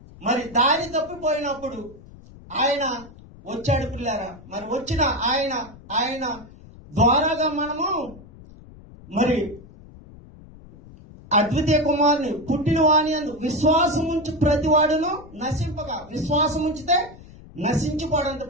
మరి దారి తప్పిపోయినప్పుడు ఆయన వచ్చాడు పిల్లరా. మరి వచ్చిన ఆయన ద్వారాగా మనము మరి అద్వితీయ కుమారుని పుట్టిన వాణి అందు విశ్వాసం ఉంచి ప్రతివాడును నశింపగా. విశ్వాసం ఉంచితే నశించిపోడంట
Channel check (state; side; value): noise; left; rumble, 20 dB below the sound